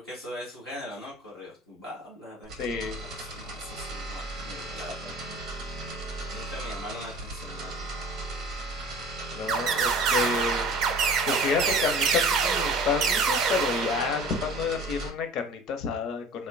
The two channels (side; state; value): both; normal; correlation 0.43